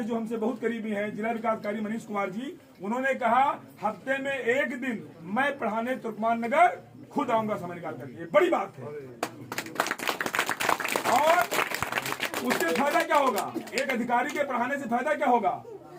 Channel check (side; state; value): both; identical; correlation 1.00